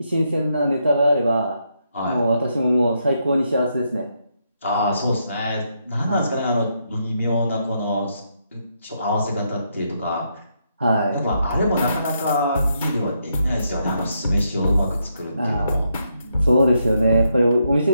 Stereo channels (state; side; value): inverted; both; correlation -0.79